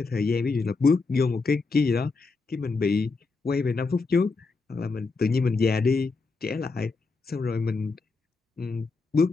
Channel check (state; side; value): quieter; right; 4.1 dB